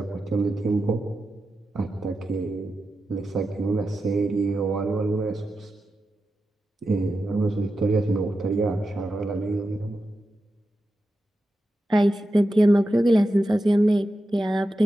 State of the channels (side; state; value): both; normal; correlation 0.90